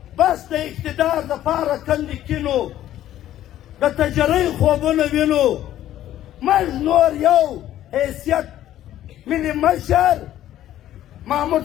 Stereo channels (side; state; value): right; quieter; 12.6 dB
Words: بس د اقتدار دپاره کندې کینو د تجرۍ خوبونه وینو موږ نور یو حیثیت ملي مشر محمود